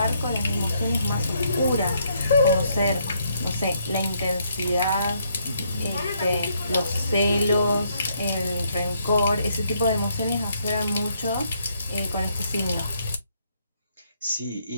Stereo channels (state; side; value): inverted; both; correlation -0.72